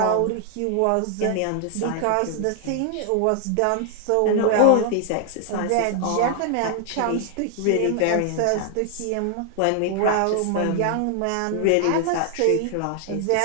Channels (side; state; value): both; different; correlation 0.00